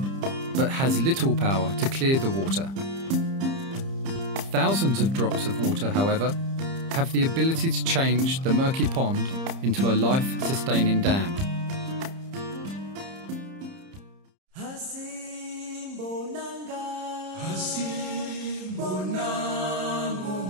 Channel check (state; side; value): late; left; 30 ms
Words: but has little power to clear the water. Thousands of drops of water, however, have the ability to change the murky pond into a life-sustaining dam.